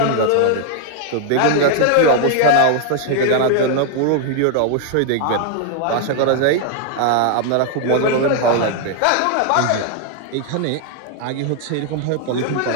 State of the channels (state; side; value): different; both; correlation 0.00